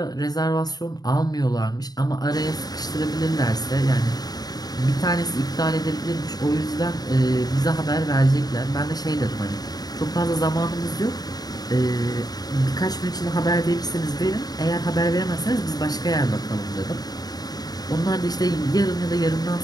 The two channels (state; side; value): late; right; 0.19 ms